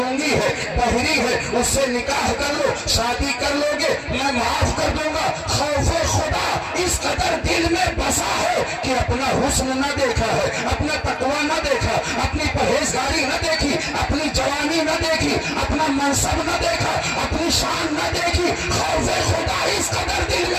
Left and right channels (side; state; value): both; identical; correlation 1.00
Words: ہے، بہری ہے، اس سے نکاح کر لو، شادی کر لو گے میں معاف کر دوں گا۔ خوف خدا اس قدر دل میں بسا ہے کہ اپنا حسن نہ دیکھا ہے، اپنا تقوی نہ دیکھا، اپنی پرہیزگاری نہ دیکھی، اپنی جوانی نہ دیکھی، اپنا منصب نہ دیکھا، اپنی شان نہ دیکھی۔ خوف خدا اس قدر دل